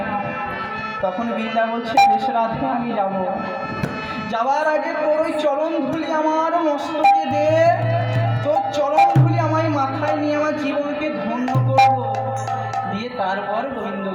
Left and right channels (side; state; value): both; identical; correlation 1.00